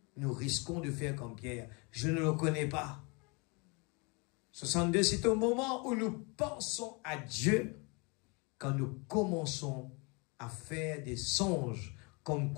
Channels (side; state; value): right; quieter; 30.4 dB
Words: Nous risquons de faire comme Pierre. Je ne le connais pas. 62, c'est au moment où nous pensons à Dieu, quand nous commençons à faire des songes comme